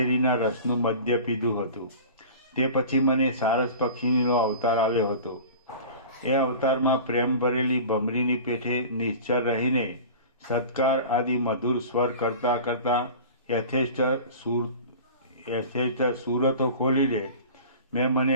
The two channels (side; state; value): both; inverted; correlation -0.38